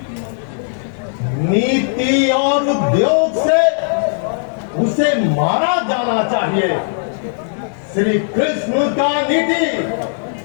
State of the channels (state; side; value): silent; right; 68 dB below the other